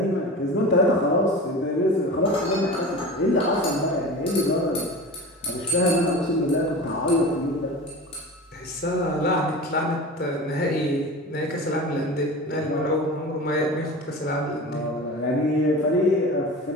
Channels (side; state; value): both; normal; correlation 0.33